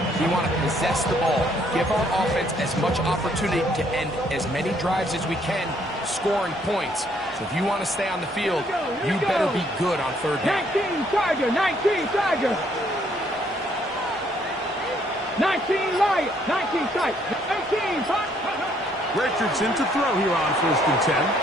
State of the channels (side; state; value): both; normal; correlation 0.67